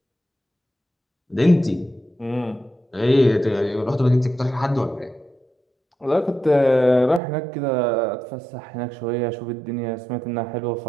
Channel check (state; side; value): drops out; left; at 7.2 s